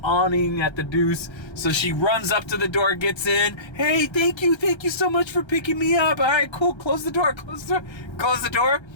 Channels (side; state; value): right; late; 1.3 ms